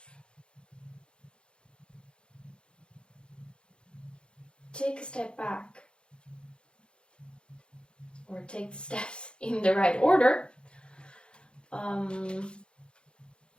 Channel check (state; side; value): late; right; 0.054 ms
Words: take a step back or take the steps in the right order,